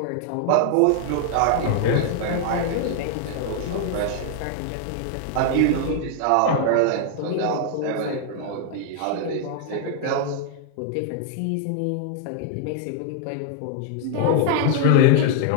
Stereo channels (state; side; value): different; both; correlation 0.00